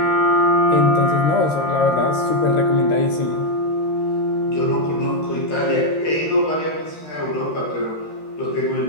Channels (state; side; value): late; right; 13 ms